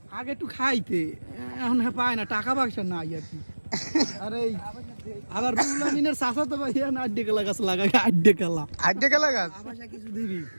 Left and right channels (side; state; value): both; inverted; correlation -1.00